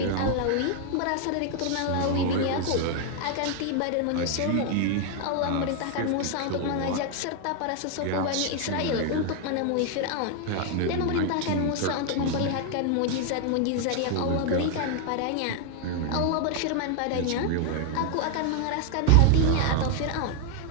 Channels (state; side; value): different; both; correlation 0.00